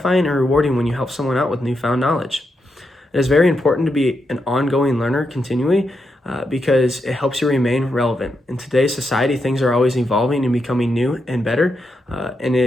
and rewarding when you help someone out with newfound knowledge. It is very important to be an ongoing learner continually because it helps you remain relevant. In today's society, things are always evolving and becoming new and better, and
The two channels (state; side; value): normal; both; correlation 0.84